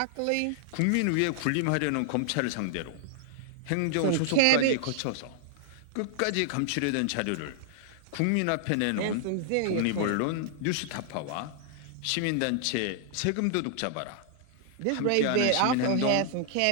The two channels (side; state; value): both; different; correlation 0.00